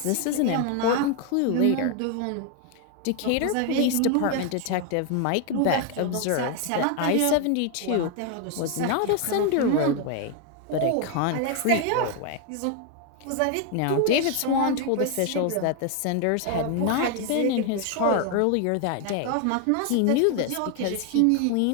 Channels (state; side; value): different; both; correlation 0.01